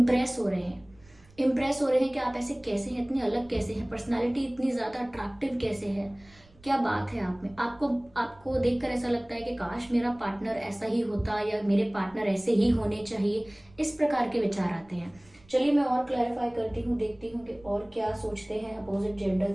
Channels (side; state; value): right; noise; rumble, 27 dB below the sound